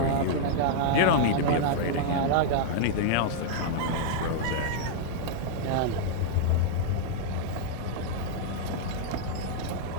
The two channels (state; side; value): different; both; correlation -0.01